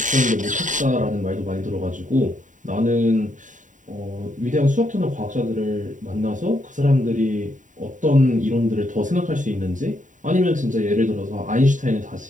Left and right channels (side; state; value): left; late; 0.37 ms